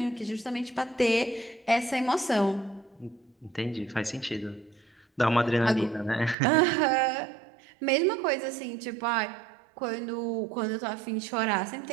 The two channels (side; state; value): left; drops out; at 6.4 s